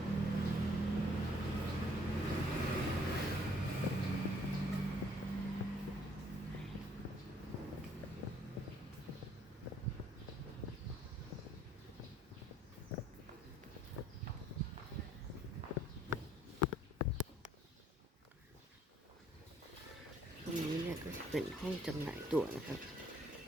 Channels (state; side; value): normal; both; correlation 0.62